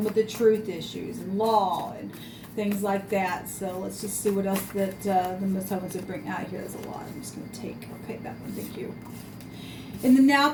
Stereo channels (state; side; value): identical; both; correlation 1.00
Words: with the truth issues and law and things like that. So let's just see what else that the Most High wants to bring out here. There's a lot. I'm just going to take, okay, that one, thank you. In the now